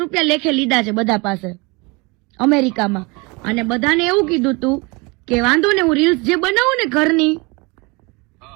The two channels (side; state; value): left; quieter; 27.3 dB